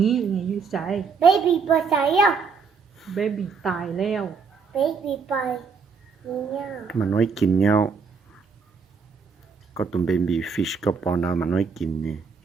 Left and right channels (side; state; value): left; quieter; 5.5 dB